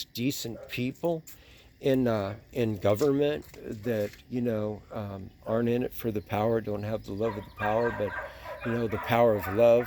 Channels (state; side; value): identical; both; correlation 1.00